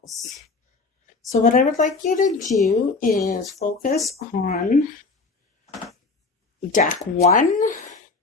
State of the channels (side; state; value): right; quieter; 4.0 dB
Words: So what I would like you to do is focus on deck 1,